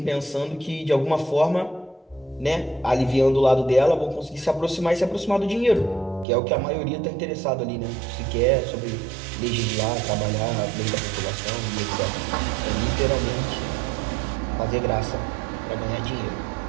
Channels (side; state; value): left; drops out; at 6.2 s